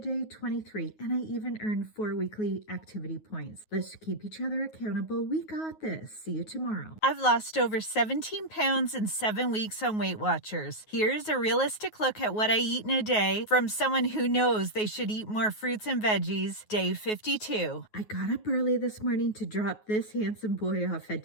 23. And I even earned 4 weekly activity points. Let's keep each other accountable. We got this. See you tomorrow. I've lost over 17 pounds in 7 weeks on Weight Watchers. Here's a realistic look at what I eat in a day from someone who knows they should eat more fruits and veggies. Day 52. I got up early this morning to drop this handsome boy off at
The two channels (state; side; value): late; right; 9.4 ms